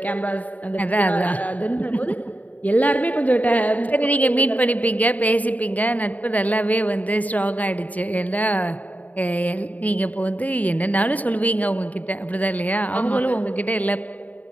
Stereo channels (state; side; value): late; right; 0.074 ms